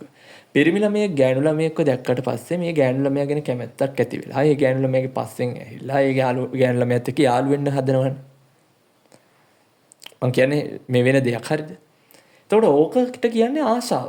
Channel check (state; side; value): identical; both; correlation 1.00